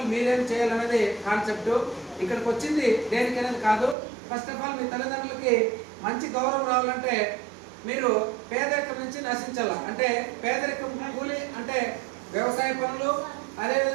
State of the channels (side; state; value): left; drops out; at 4.0 s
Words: మీరేం చేయాలనేది కాన్సెప్ట్. ఇక్కడికి వచ్చింది దేనికనేది కాదు. ఫస్ట్ ఆఫ్ ఆల్ మీ తల్లిదండ్రులకి మంచి గౌరవం రావాలంటే మీరు పేదరికం నుంచి నశించాల. అంటే పేదరికం కూలి అంటే వ్యవసాయ పనులు,